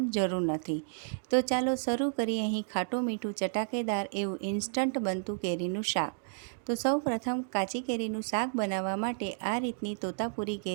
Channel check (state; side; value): silent; left; digital silence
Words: જરૂર નથી। તો ચાલો શરૂ કરીએ। અહીં ખાટું મીઠું ચટાકેદાર એવું ઇન્સ્ટન્ટ બનતું કેરીનું શાક। તો સૌ પ્રથમ કાચી કેરીનું શાક બનાવવા માટે આ રીતની તોતાપુરી